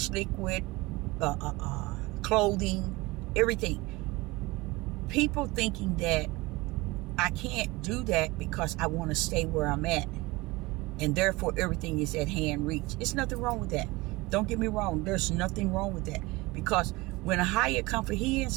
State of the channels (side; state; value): left; quieter; 22.0 dB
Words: liquid, clothing, everything. People thinking that I can't do that because I want to stay where I'm at, and therefore everything is at hand reach. There's nothing wrong with that. Don't get me wrong. There's nothing wrong with that, because when Ahia come for his,